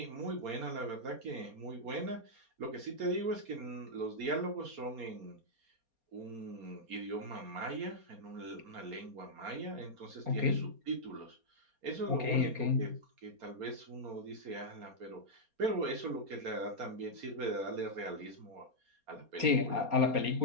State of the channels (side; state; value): left; late; 4.3 ms